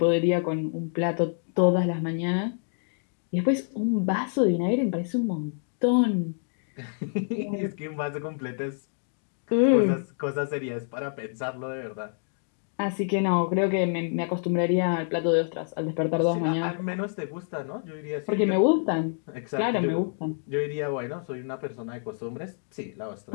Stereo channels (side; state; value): right; silent; digital silence